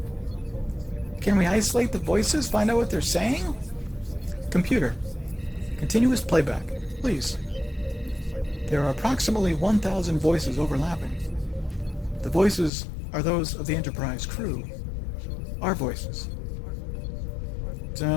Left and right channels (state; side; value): drops out; right; at 12.7 s